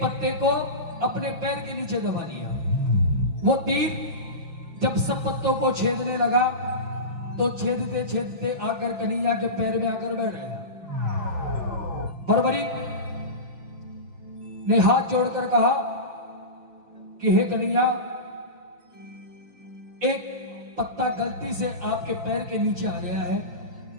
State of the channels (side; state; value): left; late; 6.0 ms